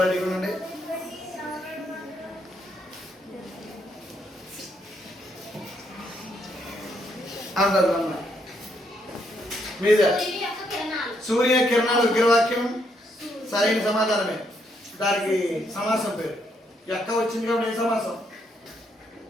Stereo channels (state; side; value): normal; both; correlation 0.75